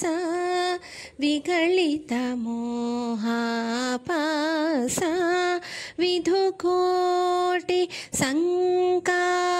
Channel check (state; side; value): identical; both; correlation 1.00